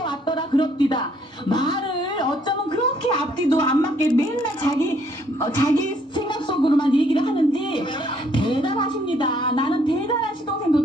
그럽디다. 말을 어쩌면 그렇게 앞뒤도 안 맞게 맨날 자기 생각 속으로만 얘기를 하는지 대단하십니다. 나는 대단한 시동생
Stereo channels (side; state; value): both; normal; correlation 0.66